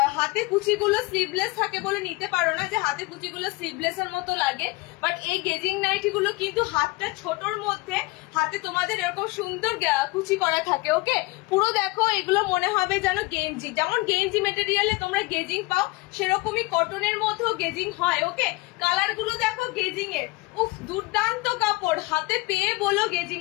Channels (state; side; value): quieter; right; 23.1 dB